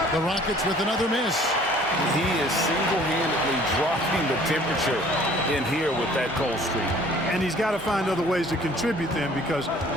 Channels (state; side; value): normal; both; correlation 0.53